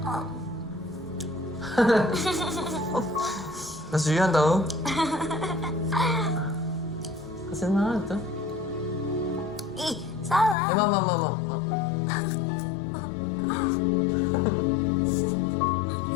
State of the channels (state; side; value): drops out; right; at 10.6 s